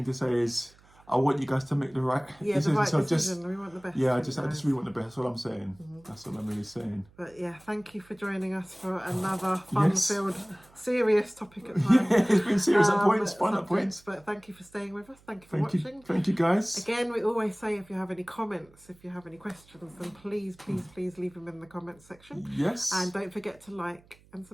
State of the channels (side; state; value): right; noise; hum, 28 dB below the sound